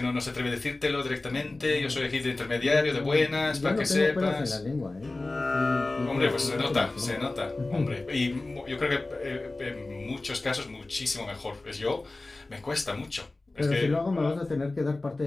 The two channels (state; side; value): quieter; right; 3.1 dB